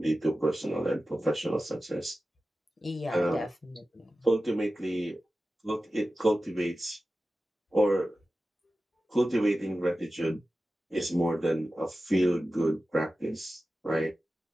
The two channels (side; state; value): both; normal; correlation 0.94